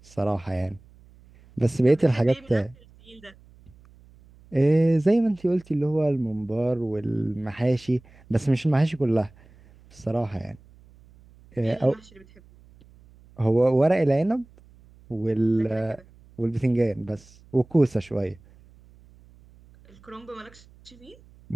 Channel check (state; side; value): noise; right; hum, 26 dB below the sound